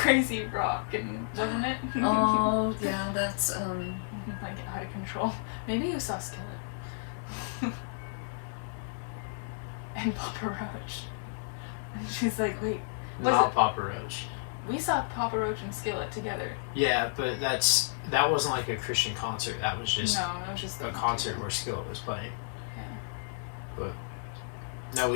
rock, and wasn't it? Oh yeah, that's Like out of control. Maybe you saw Skillet. And Papa Roach. And she's like, wait, was Not it- Papa Roach. we saw Papa Roach and Skillet together. Yeah, but that wasn't like a Christian concert. That was just No, it was just a concert where Skillet was playing. Yeah. But no,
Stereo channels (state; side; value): silent; right; digital silence